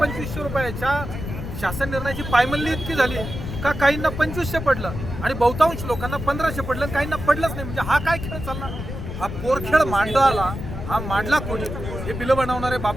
रुपयाच्या शासन निर्णयाची पायमल्ली इतकी झाली का काहींना 2500 पडलं आणि बहुतांश लोकांना 1500 पडलं, काहींना पडलंच नाही। म्हणजे हा काय खेळ चालला? हा पोरखेळ मांडला, हा मांडला कोणी? हे बिलं बनवणारे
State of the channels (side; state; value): left; noise; rumble, 7 dB below the sound